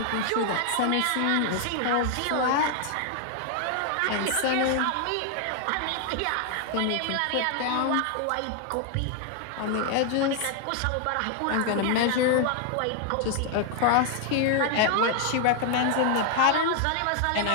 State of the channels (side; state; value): both; different; correlation 0.00